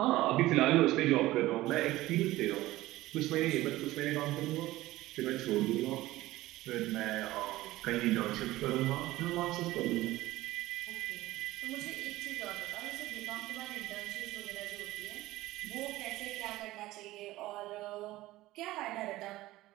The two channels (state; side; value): quieter; left; 17.1 dB